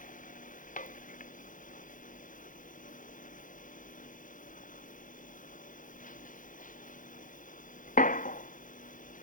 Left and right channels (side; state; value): right; late; 0.38 ms